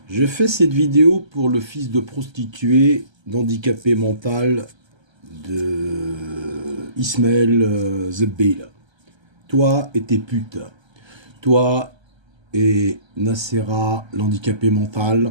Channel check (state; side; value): late; left; 1.3 ms